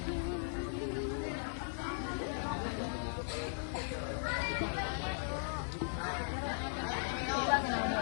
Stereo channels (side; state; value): right; silent; 52 dB below the other